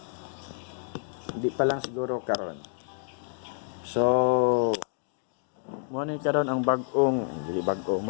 hindi pa lang siguro karon. So, muna karon ang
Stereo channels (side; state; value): right; silent; digital silence